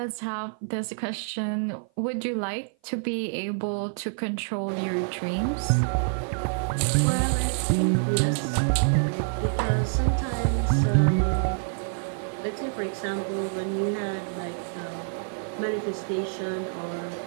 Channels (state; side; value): silent; left; 55 dB below the other